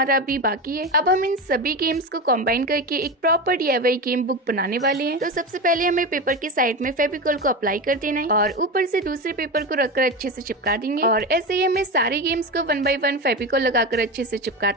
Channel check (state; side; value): normal; both; correlation 0.21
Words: अभी बाकी है। अब हम इन सभी गेम्स को कंबाइन करके एक प्रॉपर DIY गेम बुक बनाने वाले हैं। तो सबसे पहले हमें पेपर के साइड में फेविकॉल को अप्लाई कर देना है और ऊपर से दूसरे पेपर को रखकर अच्छे से चिपका देंगे और ऐसे ही हमें सारे गेम्स को 1 बाय 1 फेविकॉल लगाकर अच्छे से